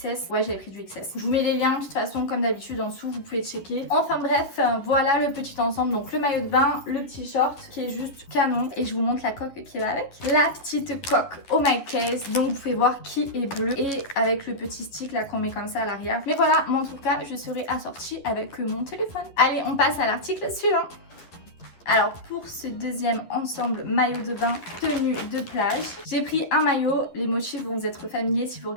Ouais, j'avais pris du XS. Je vous mets les liens de toute façon comme d'habitude en dessous, vous pouvez checker. Enfin bref, voilà le petit ensemble. Donc le maillot de bain, le petit short qui est juste canon, et je vous montre la coque qui va avec. La petite coque Oh My Case, donc vous pouvez voir qui est bleu et avec le petit stick là qu'on met comme ça à l'arrière. Mais voilà, moi en tout cas je serai assortie avec mon téléphone. Allez, on passe à l'article suivant. Alors pour ce deuxième ensemble maillot de bain tenue de plage, j'ai pris un maillot, les motifs vont vous être familiers si vous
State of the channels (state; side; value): late; right; 11 ms